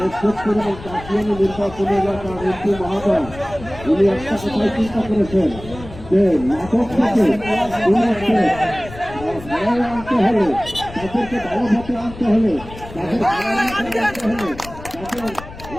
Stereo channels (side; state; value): left; noise; rumble, 15 dB below the sound